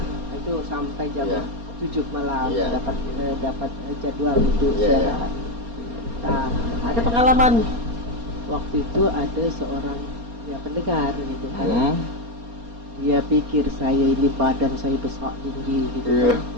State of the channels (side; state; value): left; late; 4.3 ms